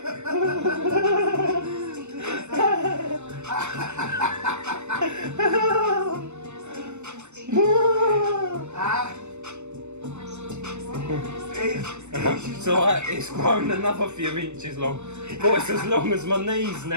So it's grown another few inches long. But it's as long as my knees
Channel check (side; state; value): left; late; 0.83 ms